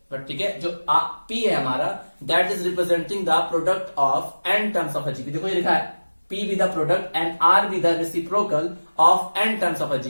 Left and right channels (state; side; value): inverted; both; correlation -1.00